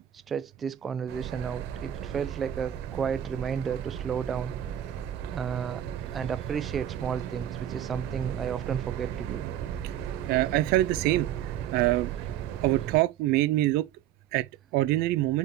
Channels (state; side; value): quieter; left; 11.5 dB